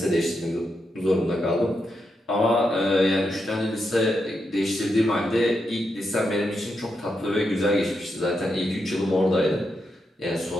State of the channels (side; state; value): both; normal; correlation 0.84